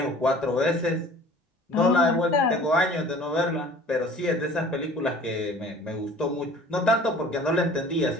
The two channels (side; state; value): both; normal; correlation 0.47